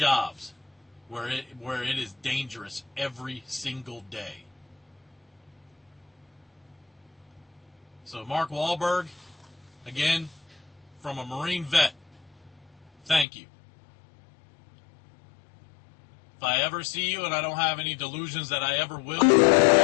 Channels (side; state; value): right; drops out; at 13.2 s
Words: where it is dangerous every single day. So Mark Wahlberg, again, from a Marine vet, thank you. If I ever see you, and I don't have any delusions that I ever will, if I